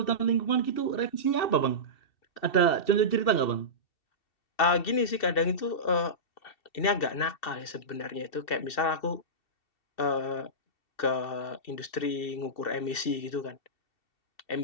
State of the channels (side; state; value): right; late; 2.7 ms